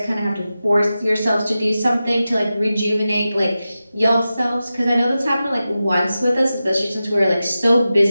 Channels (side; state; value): both; inverted; correlation -0.93